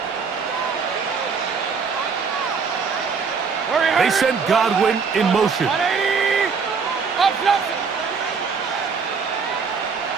They send Godwin in motion. 180!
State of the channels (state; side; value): quieter; left; 5.5 dB